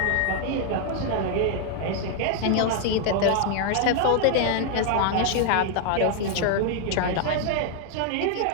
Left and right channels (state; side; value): different; both; correlation 0.00